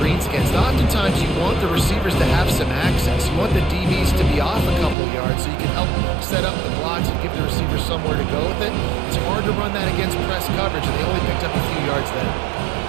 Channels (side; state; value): left; drops out; at 5.0 s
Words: against. Oftentimes you want the receivers to have some access. You want the DBs to be off a couple of yards so you can help set up the blocks and give the receivers somewhere to go with it. It's hard to run that against press coverage, and they only picked up a few yards there.